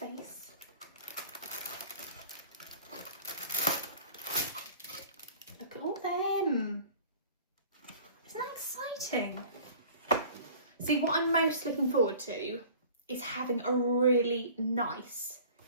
Look at all them. Isn't that exciting? See, what I'm most looking forward to is having a really nice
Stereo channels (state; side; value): inverted; both; correlation -0.45